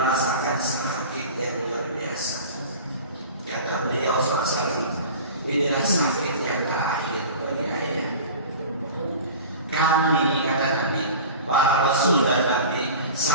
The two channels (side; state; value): both; inverted; correlation -0.36